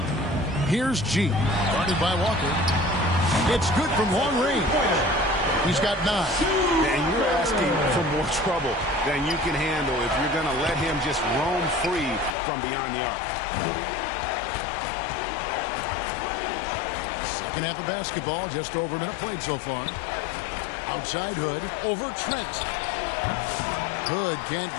Here's G. Guarded by Walker. It's good from long range. He's got 9. And you're asking for more trouble than you can handle if you're going to let him just roam free from beyond the arc. Second half of basketball, just over a minute played so far. Outside Hood, over Trent. Hood can't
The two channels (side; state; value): right; drops out; at 12.3 s